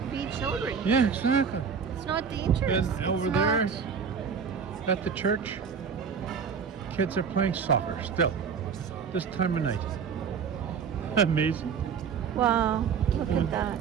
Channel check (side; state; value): left; quieter; 6.5 dB